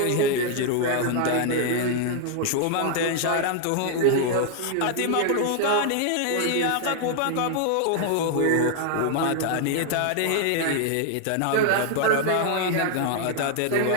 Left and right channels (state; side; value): different; both; correlation 0.00